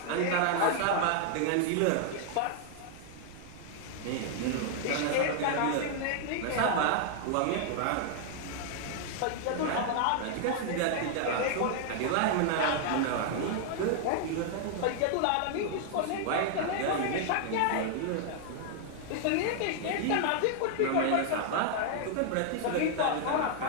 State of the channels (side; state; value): both; different; correlation -0.01